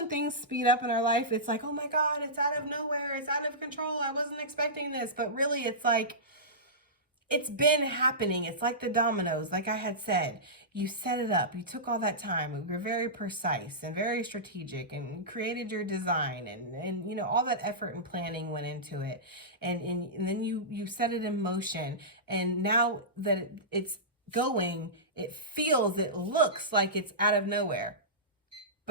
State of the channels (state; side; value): normal; both; correlation -0.17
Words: things speed up in our life, it's like, oh my God, it's out of nowhere. It's out of control. I wasn't expecting this. But really, it's like, it's been happening. It's like the dominoes, like I had said. You set it up. You took all that time. You were very precise and very strategic and created your design. And you know, all that effort and planning went into it. And then you set it in motion. And now that it's going, it feels, it looks like it's out of nowhere.